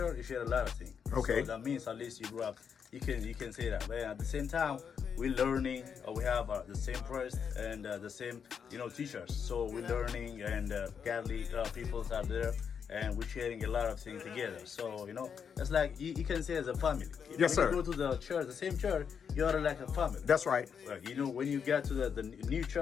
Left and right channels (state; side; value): quieter; right; 7.0 dB